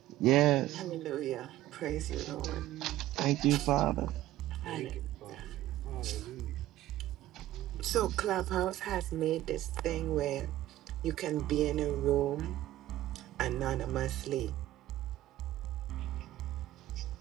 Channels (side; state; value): left; quieter; 14.6 dB